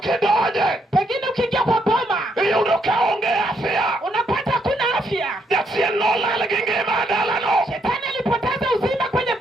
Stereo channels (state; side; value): normal; both; correlation 0.75